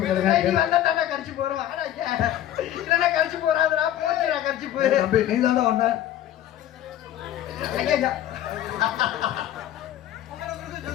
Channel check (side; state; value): right; quieter; 12.1 dB